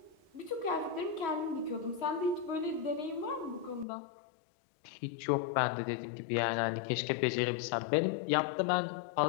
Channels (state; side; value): drops out; right; at 3.9 s